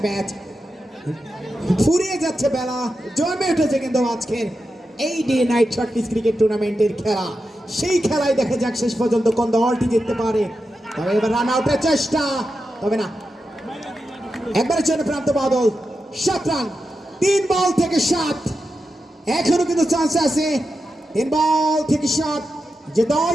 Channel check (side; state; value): both; normal; correlation 0.89